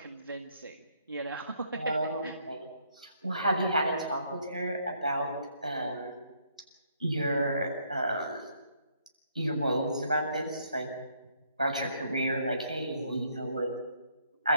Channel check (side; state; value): both; inverted; correlation -0.70